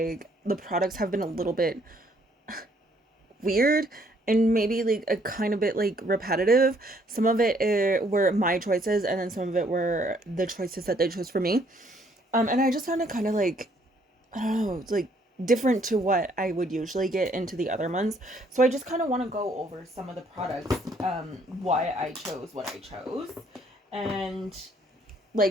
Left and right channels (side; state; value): both; normal; correlation 0.66